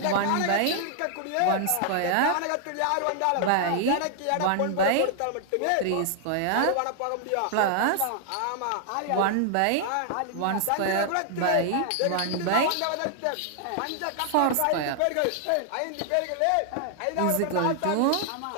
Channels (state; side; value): different; both; correlation -0.01